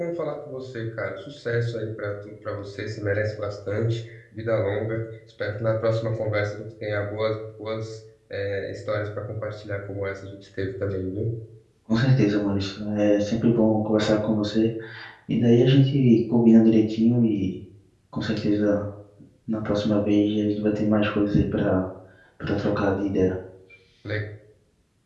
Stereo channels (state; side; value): identical; both; correlation 1.00